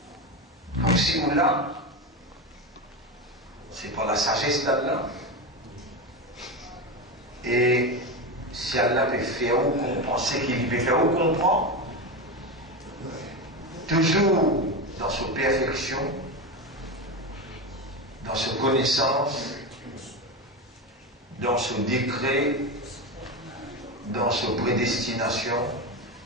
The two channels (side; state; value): both; normal; correlation 0.18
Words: Donc si ou là, c'est par la sagesse d'Allah. Et si Allah peut faire ou comprendre ce qu'il peut faire ou comprendre, toujours dans sa perfection, dans sa connaissance, dans son décret, dans sa prédestination,